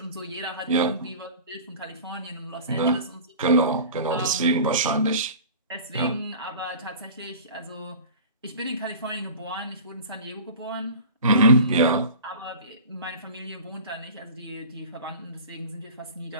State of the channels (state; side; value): inverted; both; correlation -0.38